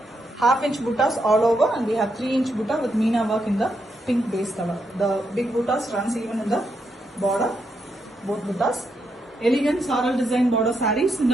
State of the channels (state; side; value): normal; both; correlation 0.81